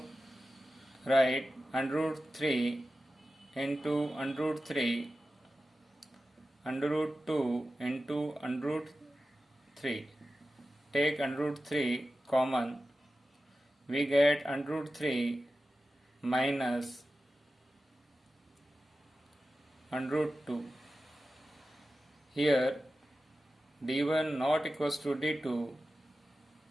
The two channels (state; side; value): normal; both; correlation 0.93